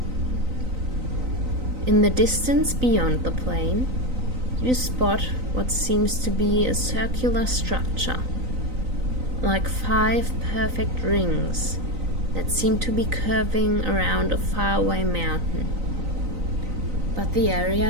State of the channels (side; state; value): left; late; 3.9 ms